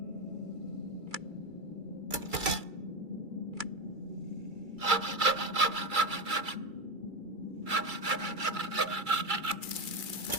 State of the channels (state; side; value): late; left; 2.3 ms